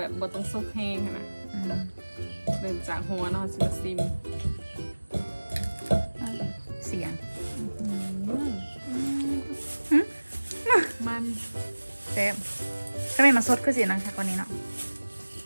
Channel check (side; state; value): both; inverted; correlation -1.00